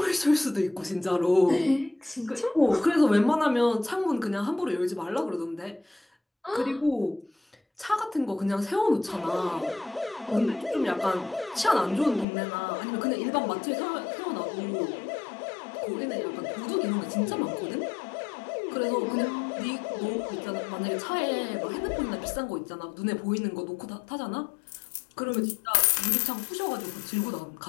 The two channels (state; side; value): drops out; right; at 12.2 s